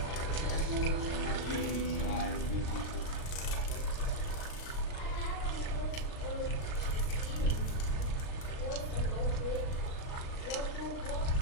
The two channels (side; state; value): right; late; 38 ms